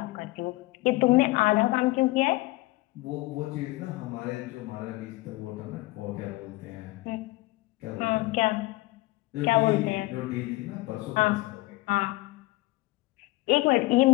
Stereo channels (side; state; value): right; quieter; 20.5 dB